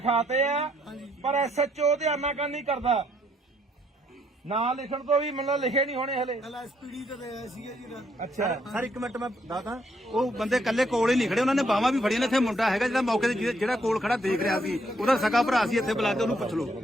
ਆ ਪਰ ਐਸਐਚਓ ਧਿਆਨ ਨਾਲ ਨਹੀਂ ਕਰਦਾ ਨਾਂ ਲਿਖਣ ਤੋਂ ਵੀ ਮੈਨੂੰ ਲਿਖੇ ਨਹੀਂ ਹੋਣੇ ਹਲੇ ਐਸਪੀਡੀ ਤੇ ਆਇਆ ਸੀਗਾ ਜੀ ਅੱਛਾ ਸਰ ਇੱਕ ਮਿੰਟ ਮੈਂ ਦੱਸਦਾ ਉਹ ਬੰਦੇ ਕੱਲੇ ਕੋਲ ਹੀ ਨਹੀਂ ਖੜੇ ਉਹਨਾਂ ਨੇ ਬਾਹਾਂ ਵੀ ਫੜੀਆਂ ਨੇ ਇੱਥੇ ਮੁੰਡਾ ਹੈਗਾ ਜਿਹੜਾ ਮੌਕੇ ਤੇ ਜਿਹੜਾ ਕੋਲ ਖੜਾ ਦੇਖ ਰਿਹਾ ਸੀ ਉਹਦਾ ਸਕਾ ਭਰਾ ਸੀ ਇੱਥੇ ਬੁਲਾ ਕੇ ਉਹਨੂੰ ਪੁੱਛ ਲਓ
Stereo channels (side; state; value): both; normal; correlation 0.71